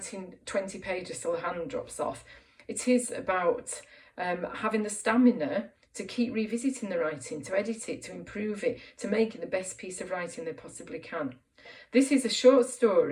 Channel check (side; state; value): both; identical; correlation 1.00